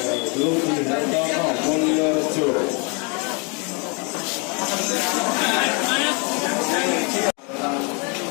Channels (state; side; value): quieter; right; 33.0 dB